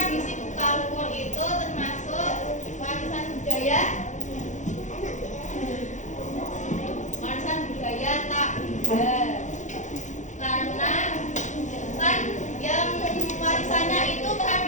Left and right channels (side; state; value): right; late; 0.35 ms